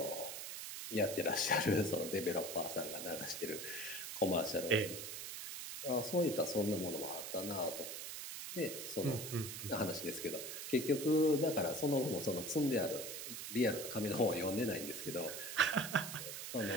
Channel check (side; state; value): right; noise; hiss, 7 dB below the sound